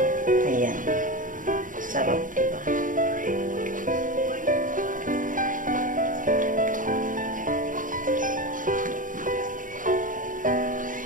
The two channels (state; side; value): late; left; 0.39 ms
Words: Ayan. Sarap, diba?